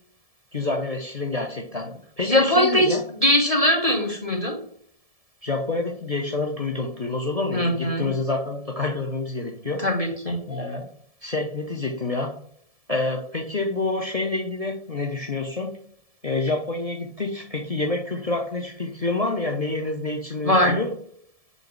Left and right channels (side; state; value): left; late; 1.7 ms